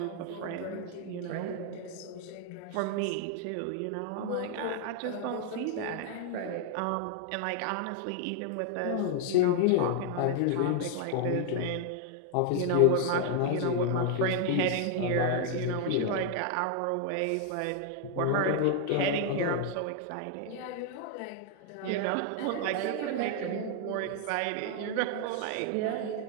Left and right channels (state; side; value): different; both; correlation 0.00